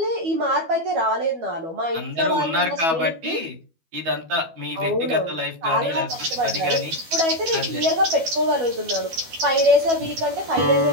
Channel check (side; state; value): left; late; 12 ms